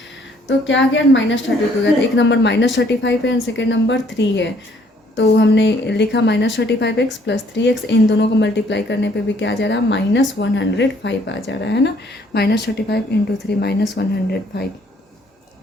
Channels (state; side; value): normal; both; correlation 0.63